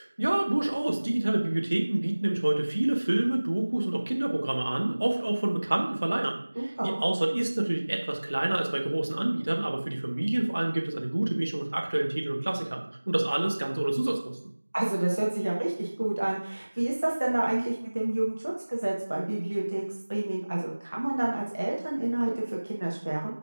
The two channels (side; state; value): both; inverted; correlation -1.00